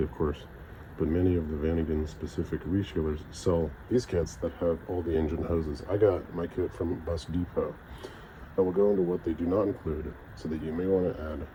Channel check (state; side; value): identical; both; correlation 1.00